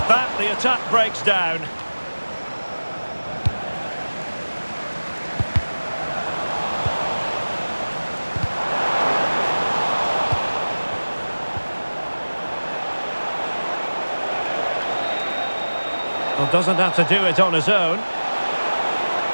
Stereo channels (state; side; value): inverted; both; correlation -1.00